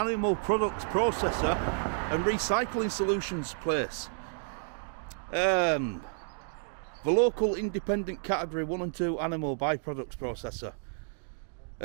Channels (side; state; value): left; silent; digital silence